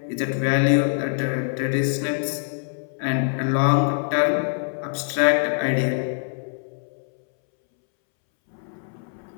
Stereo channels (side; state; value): right; silent; 63 dB below the other